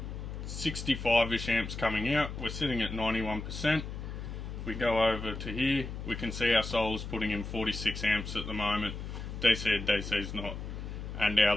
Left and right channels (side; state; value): left; noise; hum, 7 dB below the sound